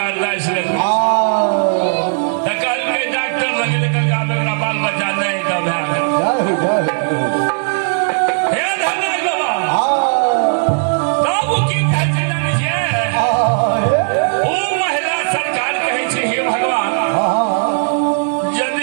जाइ छै। तऽ कहलकै डॉक्टर लगे कहलकै मेरा बाल बच्चा नहीं तब है हे धन्यवाद बाबा तब की कहै छै जानै छियै ओ महिला सरकार कहै छै हे भगवान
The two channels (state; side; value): silent; left; digital silence